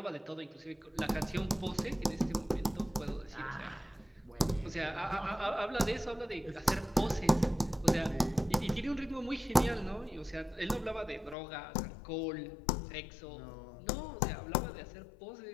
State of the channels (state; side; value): drops out; right; at 11.4 s